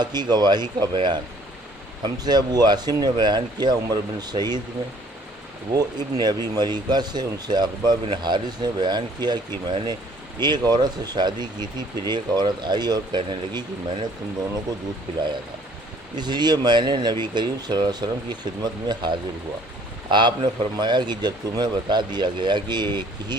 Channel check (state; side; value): normal; both; correlation 0.58